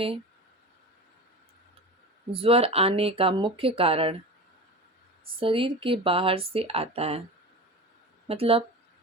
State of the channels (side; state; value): both; normal; correlation 0.30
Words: ज्वर आने का मुख्य कारण शरीर के बाहर से आता है। मतलब